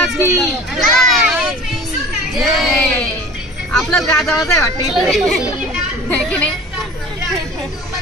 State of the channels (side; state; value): both; normal; correlation 0.42